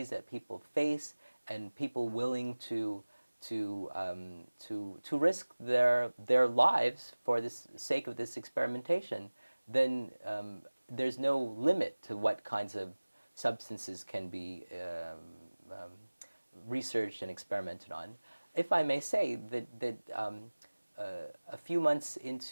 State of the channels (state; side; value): inverted; both; correlation -1.00